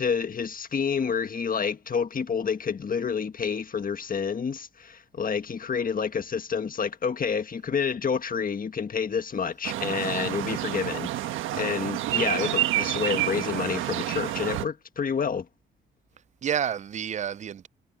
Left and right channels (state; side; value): normal; both; correlation 0.26